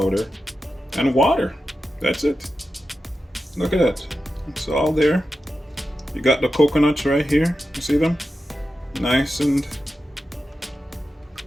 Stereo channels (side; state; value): both; normal; correlation 0.91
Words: and water. That's it. Look at that. It's all there. You got the coconuts right here. You see them? Nice and